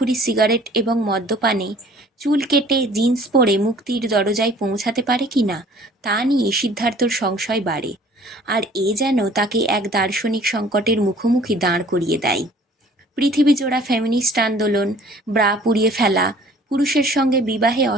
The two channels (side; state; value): both; normal; correlation 0.52